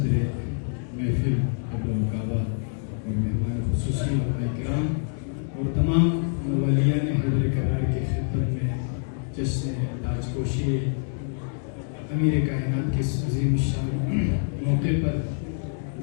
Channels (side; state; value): right; silent; digital silence